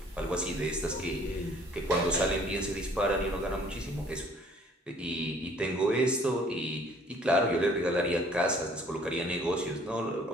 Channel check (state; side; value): normal; both; correlation 0.57